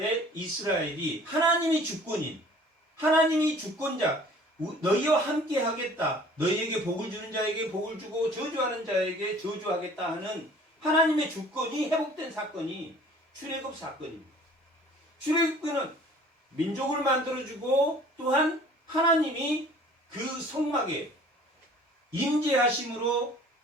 이스라엘이 하나님이 주권인 하나님이 주권자 너희와 함께 하겠다. 너희에게 복을 주는 자에게 복을 주고 저주하는 자에게 저주하겠다 하는 하나님의 주권이 회복된 사건이 출애굽 사건입니다. 출애굽은 민족을 만들어주고 또한 하나님이 그 성막에 임재하심으로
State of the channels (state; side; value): normal; both; correlation 0.50